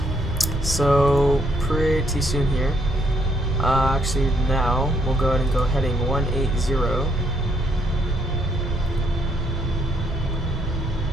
so pretty soon here. Actually now, we'll go ahead and go heading 180.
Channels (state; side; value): normal; both; correlation 0.71